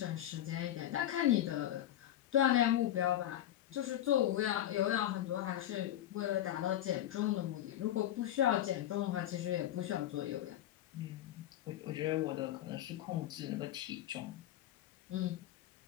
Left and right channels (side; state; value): right; quieter; 12.4 dB